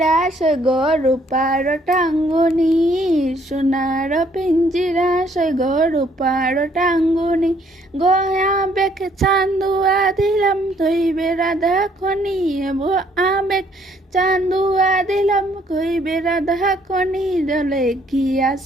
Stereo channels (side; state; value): both; normal; correlation 0.65